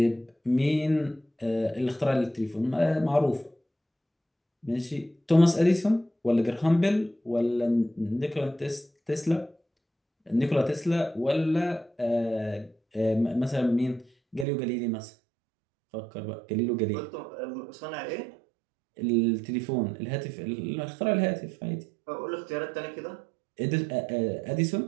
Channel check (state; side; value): drops out; left; at 14.5 s